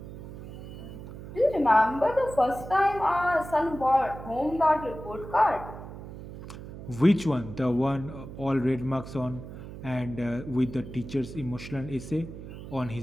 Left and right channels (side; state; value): right; noise; hum, 12 dB below the sound